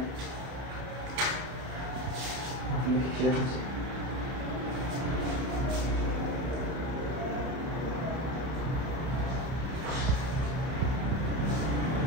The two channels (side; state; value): left; late; 31 ms